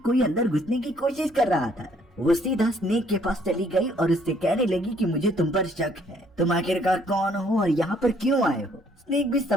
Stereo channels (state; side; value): normal; both; correlation 0.64